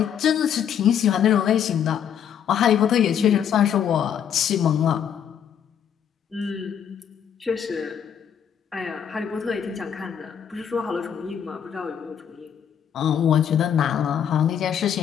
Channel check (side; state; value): right; quieter; 8.6 dB